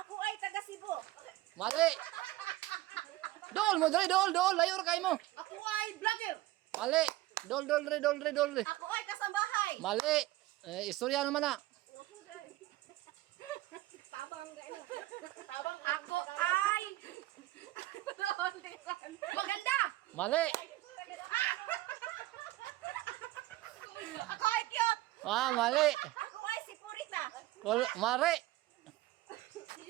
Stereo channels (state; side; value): quieter; left; 17.3 dB